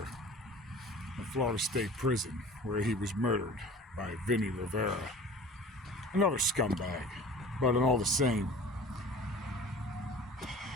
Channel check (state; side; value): normal; both; correlation 0.42